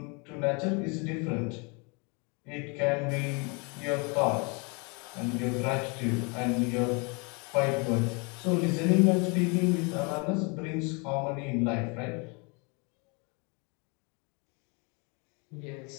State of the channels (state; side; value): quieter; right; 32.0 dB